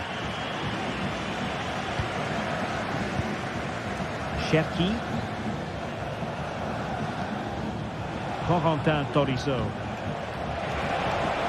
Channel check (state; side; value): identical; both; correlation 1.00